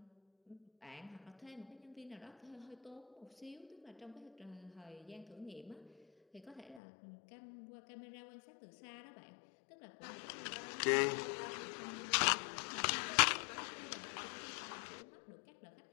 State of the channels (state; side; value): drops out; right; at 6.8 s